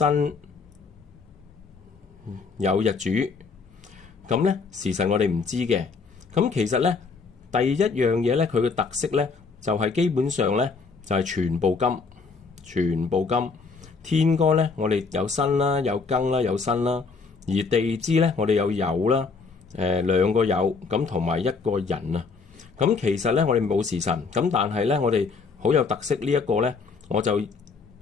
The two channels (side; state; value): right; quieter; 4.7 dB